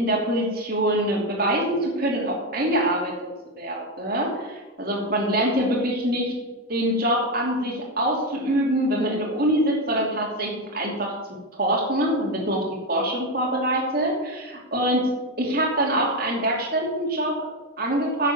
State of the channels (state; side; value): normal; both; correlation 0.10